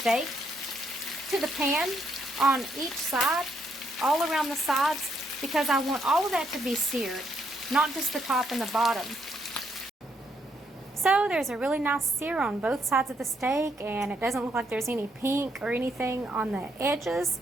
to the pan on each side, all around the sides, because I want all of that to be seared, not just the top and the bottom. So there's a really nice sear on both sides of the steak, and it doesn't look like there's any pink or anything on the edges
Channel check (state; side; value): normal; both; correlation 0.75